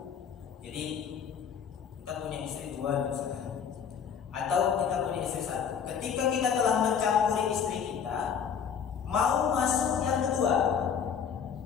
jadi kita punya istri dua misalnya, atau kita punya istri satu. Ketika kita telah mencampuri istri kita, mau masuk yang kedua,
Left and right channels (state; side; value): quieter; right; 7.4 dB